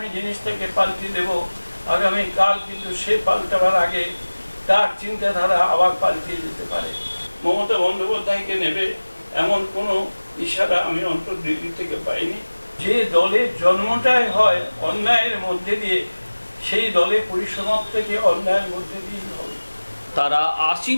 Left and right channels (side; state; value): both; inverted; correlation -1.00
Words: জিনিসটাকে পাল্টে দেব, আগামীকাল কিন্তু সে পাল্টাবার আগে তার চিন্তাধারা আবার পাল্টে যেতে পারে। মমতা বন্দ্যোপাধ্যায়কে নেবে এমন কোনো ইশারা আমি অন্তর্দিল্লি থেকে পাইনি। যে দলের জন্মটাই হয় অন্যায়ের মধ্যে দিয়ে, সেই দলে পরিসমাপ্তিটি অন্যায়ের মধ্যে দিয়েই হবে। তারা